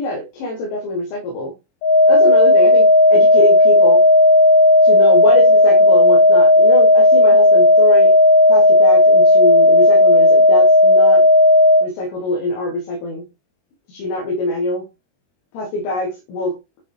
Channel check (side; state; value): right; late; 22 ms